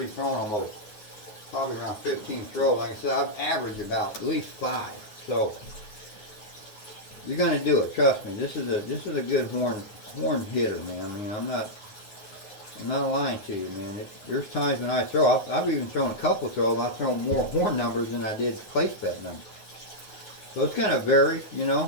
thrown almost probably around 15 throws. Like I said, I've averaged about at least 5. So you're gonna do it. Trust me. This is a good horn hitter, man. I mean, I'm not lying to you, man. There's times when I throw, I've even thrown a couple throws, I've thrown more horn numbers than I did place bet numbers. So it's gonna vary, you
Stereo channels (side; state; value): right; late; 9.5 ms